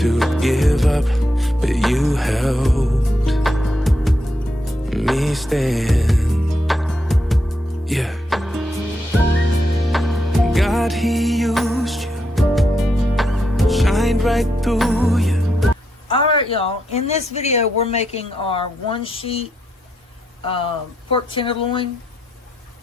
to give up, but you helped me stand. Yeah. God, He used you, shined right through you. Alright, y'all, in this video we're making our 1-sheet pork tenderloin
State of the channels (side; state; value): both; normal; correlation 0.81